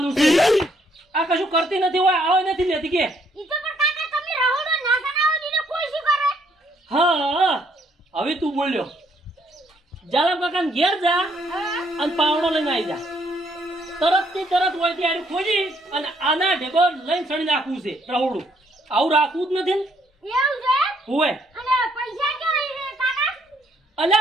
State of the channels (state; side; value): normal; both; correlation 0.69